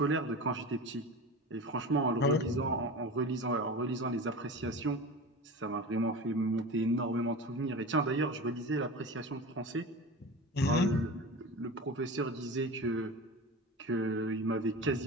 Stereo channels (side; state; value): both; normal; correlation 0.31